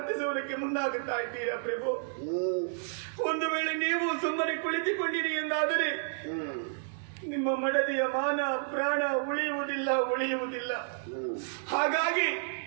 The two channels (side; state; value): left; silent; digital silence